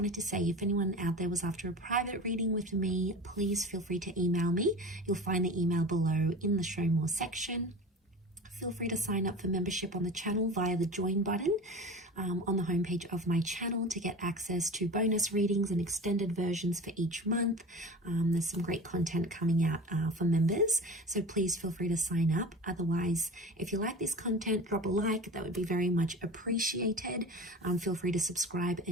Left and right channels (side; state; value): both; normal; correlation 0.34